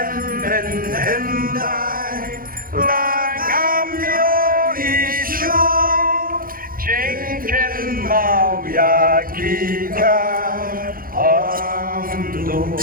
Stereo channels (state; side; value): late; left; 0.42 ms